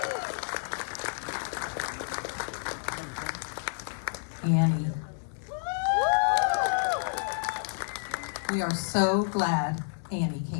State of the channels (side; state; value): right; silent; digital silence